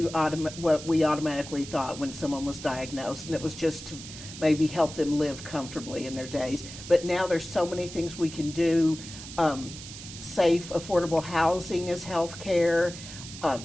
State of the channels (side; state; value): right; noise; hiss, 13 dB below the sound